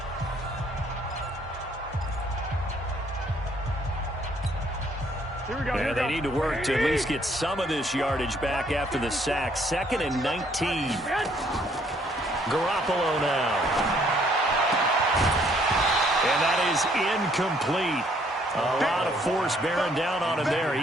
And they need to work to at least get some of this yardage back after the sack. 2nd and 19. Garoppolo now. And that is incomplete. A lot of force bearing down on him there. He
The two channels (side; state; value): both; normal; correlation 0.65